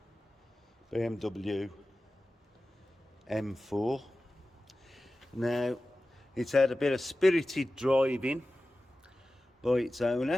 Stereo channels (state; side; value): normal; both; correlation 0.95